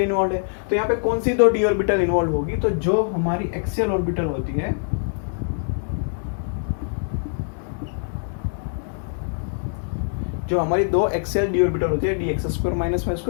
है। तो यहाँ पे कौन सी 2 d ऑर्बिटल इन्वॉल्व होगी? तो जो हमारी एक्सियल ऑर्बिटल होती है, जो हमारी 2 एक्सियल d ऑर्बिटल होती है, dx² -y²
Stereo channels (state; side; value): silent; right; digital silence